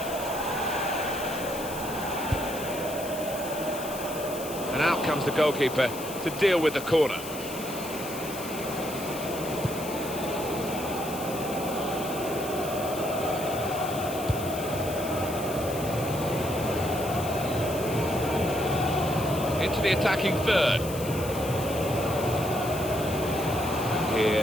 And out comes the goalkeeper to deal with the corner. Into the attacking third. And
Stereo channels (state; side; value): noise; left; hiss, 11 dB below the sound